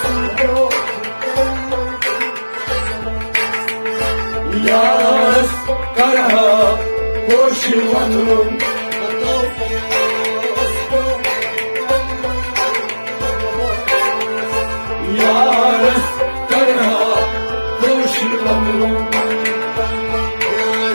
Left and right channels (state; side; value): inverted; both; correlation -1.00